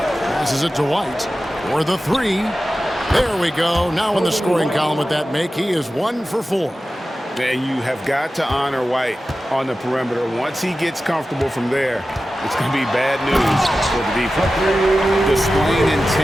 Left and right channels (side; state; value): both; normal; correlation 0.94